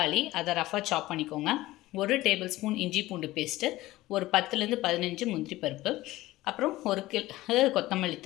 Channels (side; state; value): right; quieter; 17.4 dB